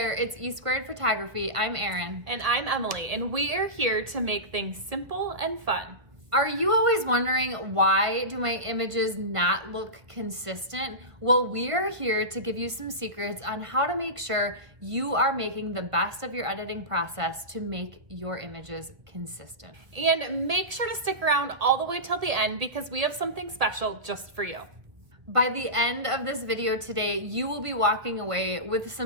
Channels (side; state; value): left; late; 1.3 ms